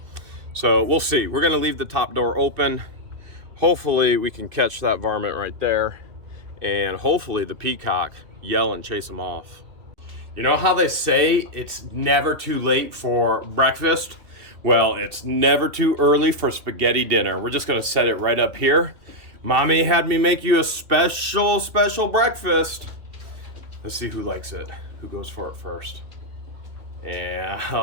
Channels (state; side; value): late; left; 2.6 ms